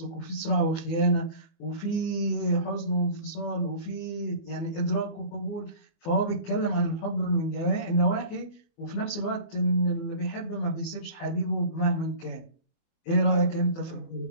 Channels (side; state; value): right; late; 25 ms